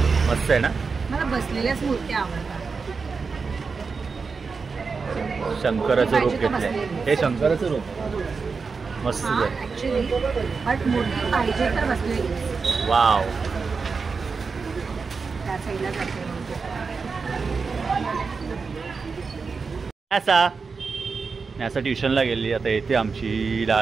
मस्त आहे ना मला बसलेल्याच मूर्ती आवडतात शंकराचं रूप घेतलंय हे शंकराचं रूप मस्त आहे बट मूर्ती पाहिजे तर बसलेली वाव त्या साईडला जाते न्यासा ट्युशनला गेली आता येते आमची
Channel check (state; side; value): quieter; left; 4.9 dB